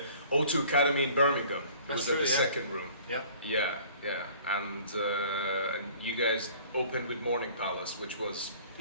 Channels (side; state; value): both; inverted; correlation -0.51